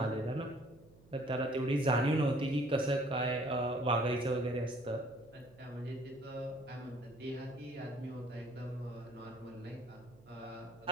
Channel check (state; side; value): noise; right; hum, 25 dB below the sound